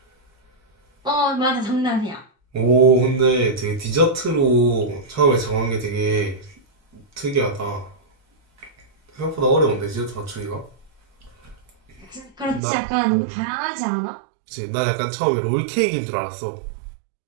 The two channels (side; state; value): left; drops out; at 12.6 s